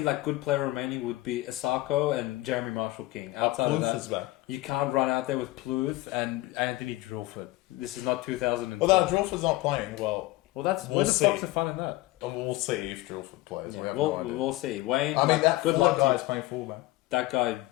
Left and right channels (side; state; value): right; quieter; 18.6 dB